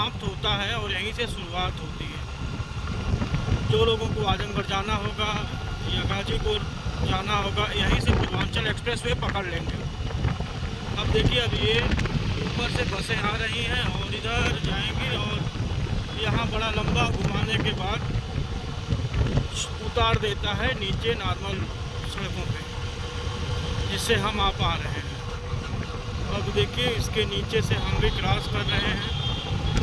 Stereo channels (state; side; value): identical; both; correlation 1.00